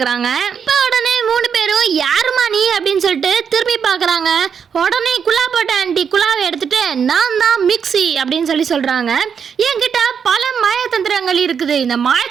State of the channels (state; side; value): quieter; left; 7.0 dB